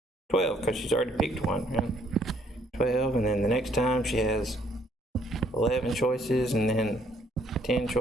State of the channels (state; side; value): normal; both; correlation 0.66